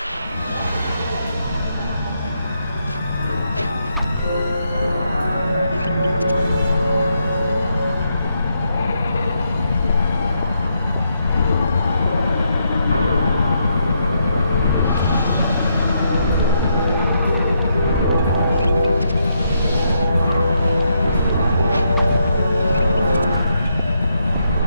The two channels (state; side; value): inverted; both; correlation -0.79